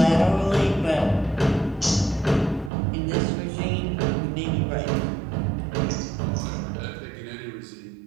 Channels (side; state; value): left; drops out; at 2.7 s